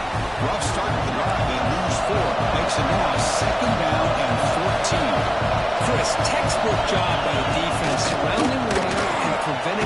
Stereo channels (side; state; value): both; identical; correlation 1.00